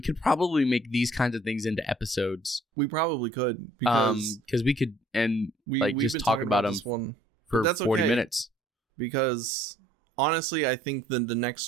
could probably make these kinds of things into episodes. We probably could, because we could we've just been talk about them this one for 40 minutes. Because honestly, I think the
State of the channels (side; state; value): both; normal; correlation 0.60